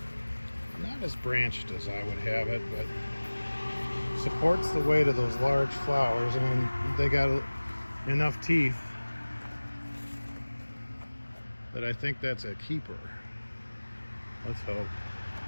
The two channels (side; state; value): both; inverted; correlation -1.00